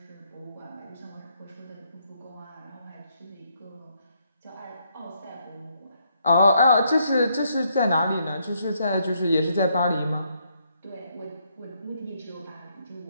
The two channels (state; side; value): inverted; both; correlation -0.74